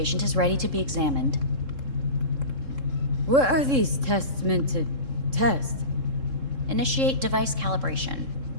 is ready to be examined. What are these tests meant to test? Initiate device calibration.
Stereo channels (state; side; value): late; left; 3.7 ms